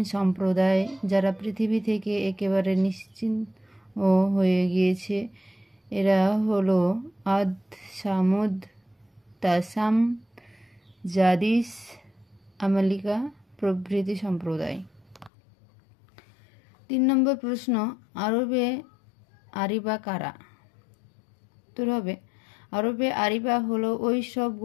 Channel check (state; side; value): drops out; right; at 15.3 s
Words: সম্প্রদায় যারা পৃথিবী থেকে একেবারে নিশ্চিহ্ন হয়ে গিয়েছে। এরা হলো আদ, সামুদ, তাসাম, জাদিস, আমালিকা প্রভৃতি সম্প্রদায়। 3 নম্বর প্রশ্ন, আরবে আরিবা কারা? উত্তর হবে, আরবে আরিবা হলো ওই সব